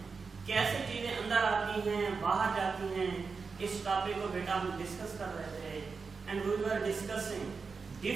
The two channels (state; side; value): quieter; left; 4.9 dB